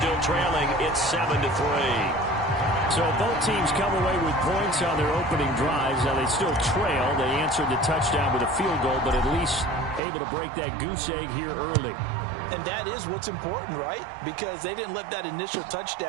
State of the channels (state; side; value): drops out; left; at 10.0 s